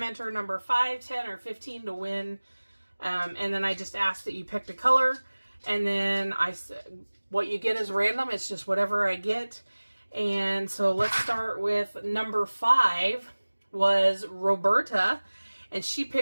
number 5, 10, or 15 to win. And then I just asked that you picked a color. And then what you get is random. It's just whatever I get. And so let's start with number 5 was Roberta. And she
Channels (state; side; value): inverted; both; correlation -1.00